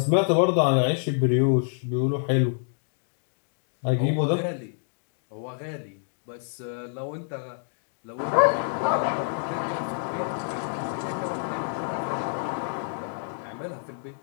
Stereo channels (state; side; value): silent; right; digital silence